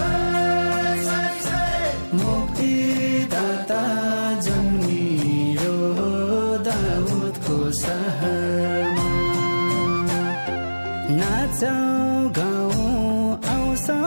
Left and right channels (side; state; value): both; inverted; correlation -1.00